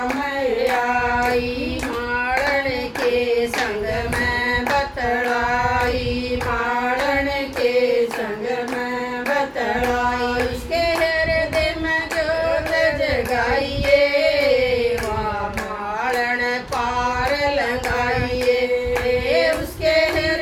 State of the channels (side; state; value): both; identical; correlation 1.00